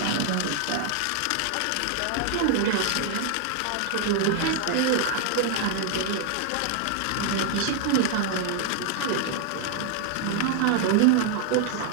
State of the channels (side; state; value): both; different; correlation 0.00